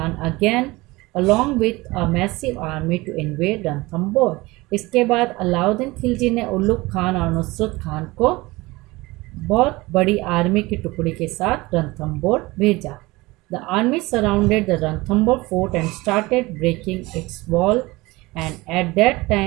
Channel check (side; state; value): left; quieter; 21.6 dB